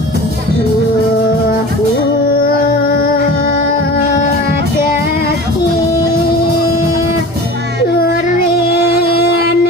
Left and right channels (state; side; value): normal; both; correlation 0.37